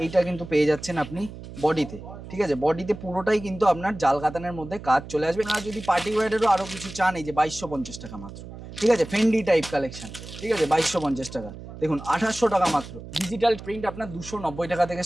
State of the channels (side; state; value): right; noise; hum, 13 dB below the sound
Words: এইটা কিন্তু পেয়ে যাচ্ছেন আপনি বডিতে। ঠিক আছে, বডিতে পুরোটাই কিন্তু আপনার জাল কাতানের মধ্যে কাজ চলে আসবে। আর যদি পার্টি ওয়্যারেরও আরো কিছু চান এই যে 2250 টাকা মাত্র। ঠিক আছে, ফেন্ডি টাইপ কালেকশন। ঠিক আছে, 2250 টাকা। দেখুন 2800 টাকা মাত্র। ডিজিটাল প্রিন্ট আপনার 290 টাকা থেকে